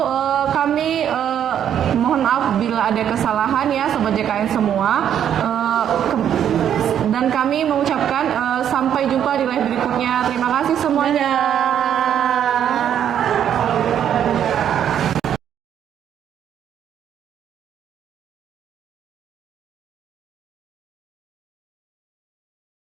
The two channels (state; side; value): quieter; left; 9.5 dB